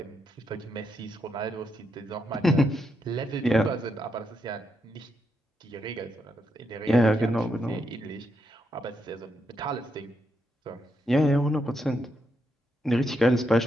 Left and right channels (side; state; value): both; normal; correlation 0.81